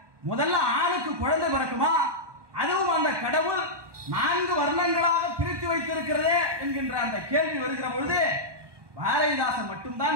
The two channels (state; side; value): late; left; 1.2 ms